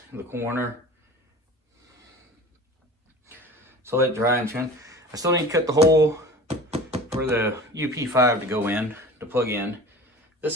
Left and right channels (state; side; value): normal; both; correlation 0.39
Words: in the corner. So let it dry and trim. I still need to cut the hole for the UP5 to go in, to plug in.